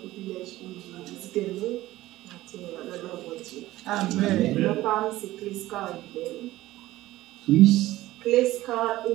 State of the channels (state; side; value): quieter; left; 16.5 dB